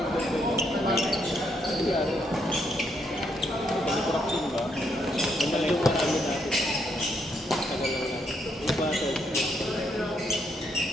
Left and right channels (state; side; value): normal; both; correlation 0.75